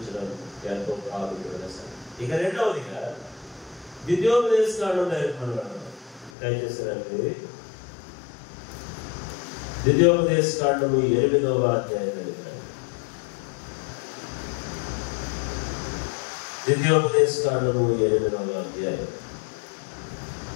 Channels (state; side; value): drops out; right; at 6.3 s